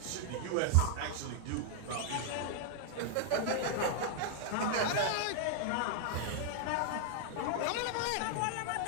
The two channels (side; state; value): both; different; correlation 0.00